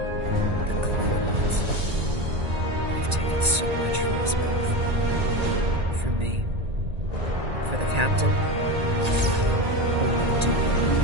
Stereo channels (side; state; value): left; late; 1.8 ms